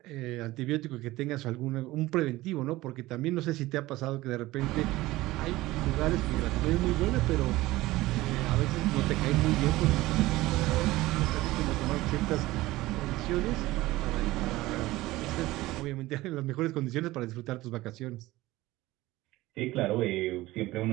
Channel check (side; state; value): left; quieter; 18.2 dB